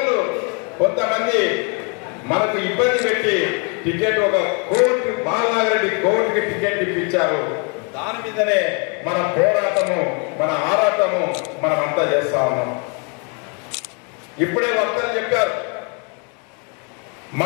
కొంతమంది మనకు ఇబ్బంది పెట్టి టికెట్ ఒక కోర్టు బాలనాగిరెడ్డి కోర్టుకి టికెట్ ఇప్పించారు. దాని మీదనే మన పోరాటము, మన ఆరాటము మనమంతా చేస్తా ఉన్నాం. ఇప్పుడే వక్తలు చెప్పారు,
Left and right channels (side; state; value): right; quieter; 36.0 dB